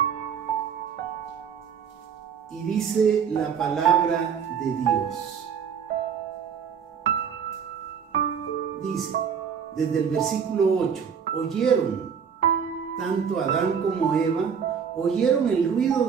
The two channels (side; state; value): left; quieter; 7.1 dB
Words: Y dice la palabra de Dios. Dice, desde el versículo 8, oyeron, tanto Adán como Eva, oyeron el ruido